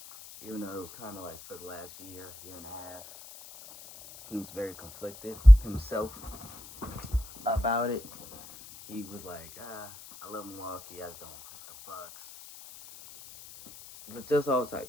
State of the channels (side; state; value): left; noise; hiss, 18 dB below the sound